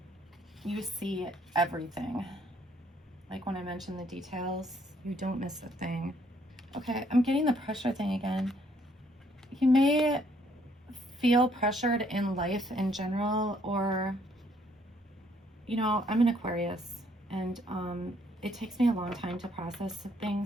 You see everything. Like when I mentioned the details, you don't miss a thing. Okay, I'm getting the pressure thing again. You may feel pressured in life in general, or, you know, I'm an Aquarius, and it takes me a long time to process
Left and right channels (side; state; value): both; normal; correlation 0.67